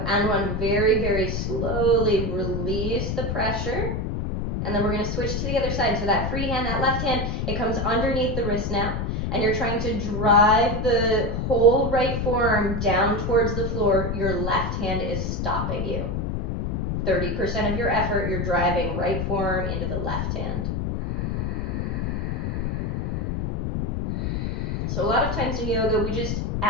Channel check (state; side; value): noise; left; rumble, 1 dB below the sound